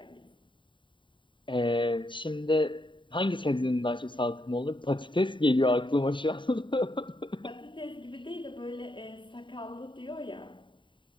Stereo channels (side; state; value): right; late; 0.23 ms